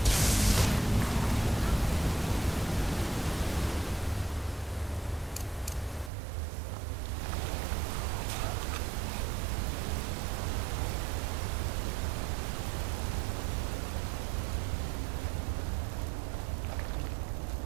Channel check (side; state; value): left; drops out; at 6.1 s